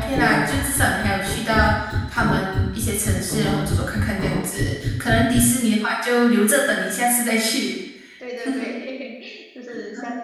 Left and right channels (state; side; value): identical; both; correlation 1.00